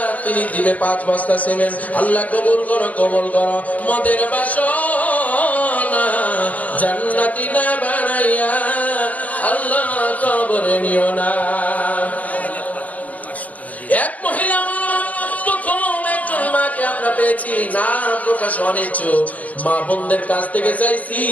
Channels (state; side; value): late; right; 0.074 ms